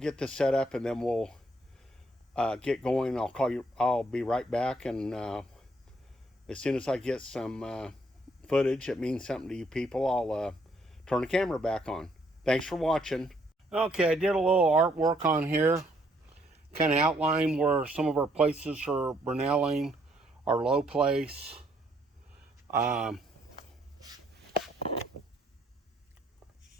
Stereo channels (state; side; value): normal; both; correlation 0.69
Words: this set up, and then we'll get going. I'll call you. I'll be right back, and as soon as I get some footage that means something to you people, I'll turn the camera back on. Thanks for watching. Okay, I did a little artwork on here, kind of outline where some of our places are Brunelling, our low place.